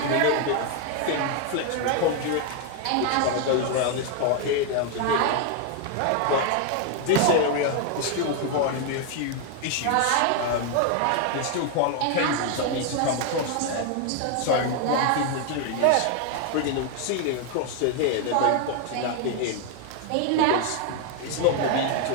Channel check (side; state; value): both; different; correlation 0.00